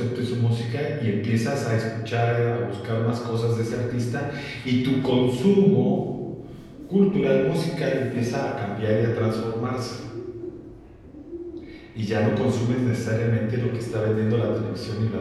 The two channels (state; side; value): identical; both; correlation 1.00